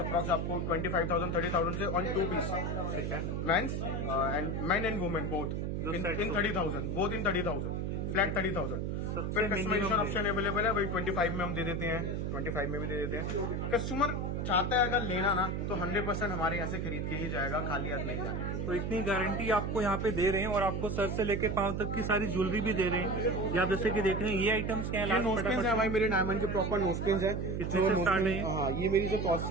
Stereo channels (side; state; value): right; noise; hum, 1 dB below the sound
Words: आपको 25,000 30,000 से ऑन 2 पीस। ठीक है, men's and men and women both in 30,000, both in 30,000। Flat 30,000। सबसे फिर कस्टमाइजेशन minimum ऑप्शन अवेलेबल है भाई, 25 में हम दे देते हैं, 25 में भी दे देते हैं। कस्टमर चाहता है अगर लेना ना तो 100% हमारे यहाँ से खरीद के ही जाएगा, खाली हाथ नहीं जाएगा। तो इतनी गारंटी आपको यहाँ पे दे रहे हैं और आपको सर से लेकर पांव तक की सारी ज्वेलरी भी दे रहे हैं। ये आप जैसे कि देख रहे हैं ये आइटम्स क्या ये नोस्पिन है भाई, मेरे डायमंड के प्रॉपर नोस्पिन है। कितने से स्टार्ट है? हाँ, ये मेरी जो